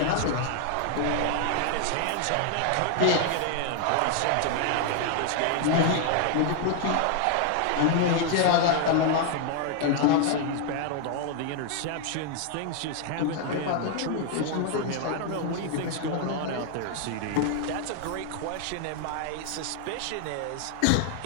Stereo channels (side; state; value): both; different; correlation 0.00